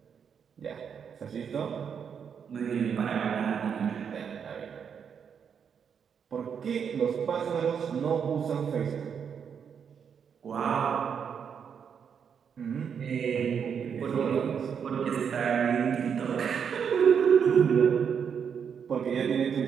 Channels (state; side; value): quieter; left; 7.2 dB